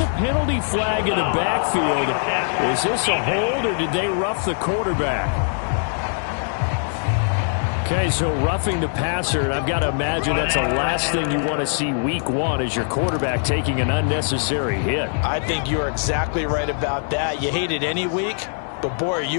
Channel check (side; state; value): right; silent; digital silence